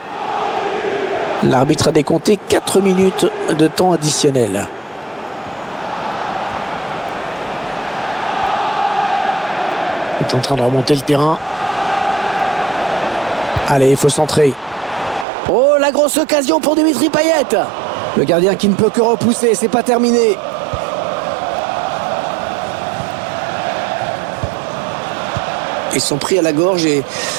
L'arbitre a décompté 4 minutes de temps additionnel. Il est en train de remonter le terrain. Allez, il faut centrer. Oh, la grosse occasion pour Dimitri Payet. Le gardien qui ne peut que repousser, c'est pas terminé. Ils sont pris à la gorge et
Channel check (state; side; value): drops out; left; at 15.2 s